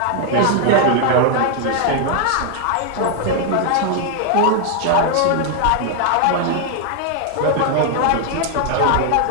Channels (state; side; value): different; both; correlation 0.00